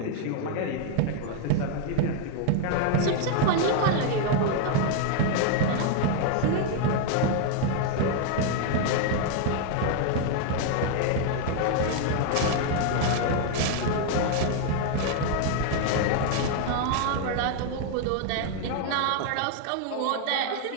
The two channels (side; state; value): both; different; correlation 0.00